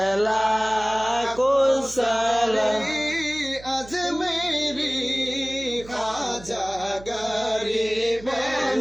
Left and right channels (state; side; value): noise; right; hum, 18 dB below the sound